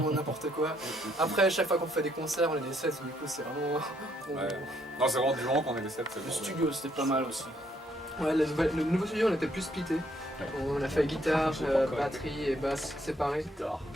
n'importe quoi. Après, chaque fois qu'on fait des concerts, on est des 7, du coup c'est vraiment... Ouais. Non, c'est vraiment du moment qu'on est des 7. Le studio, c'était pas mal aussi. Ouais, le nouveau studio, on était plus splitté. Ouais. On a fait guitare, Je sais pas encore. batterie et basse séparées. Guitare.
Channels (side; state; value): both; normal; correlation 0.70